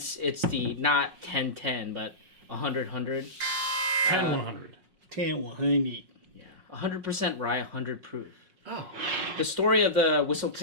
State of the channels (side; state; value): left; late; 5.5 ms